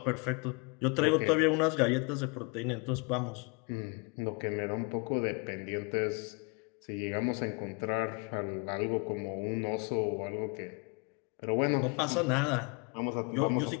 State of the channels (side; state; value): right; quieter; 33.2 dB